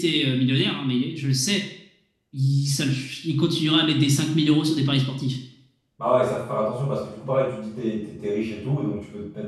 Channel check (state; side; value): identical; both; correlation 1.00